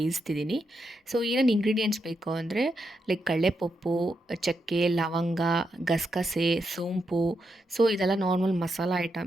ಸೊ ಏನೇನು ಇಂಗ್ರೀಡಿಯೆಂಟ್ಸ್ ಬೇಕು ಅಂದರೆ ಲೈಕ್ ಕಡಲೆಪಪ್ಪು, ಚಕ್ಕೆ, ಲವಂಗ, ಗಸಗಸೆ, ಸೋಂಪು. ಸೊ ಇದೆಲ್ಲ ನಾರ್ಮಲ್ ಮಸಾಲ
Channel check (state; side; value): normal; both; correlation 0.83